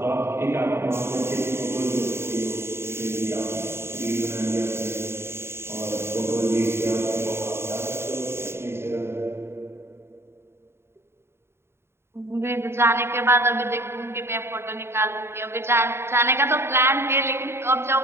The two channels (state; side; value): late; left; 0.12 ms